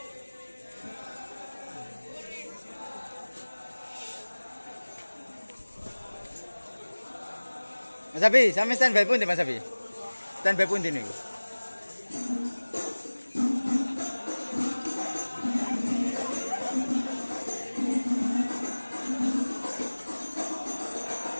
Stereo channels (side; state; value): both; inverted; correlation -1.00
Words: Mas Abi, sampe standby pun di Mas Abi. Standby pun di nih.